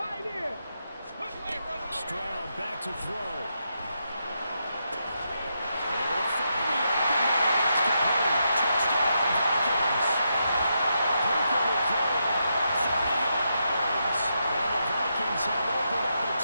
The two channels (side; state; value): both; inverted; correlation -0.83